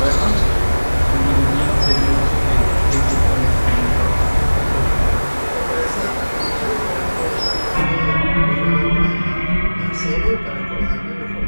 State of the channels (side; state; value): both; inverted; correlation -1.00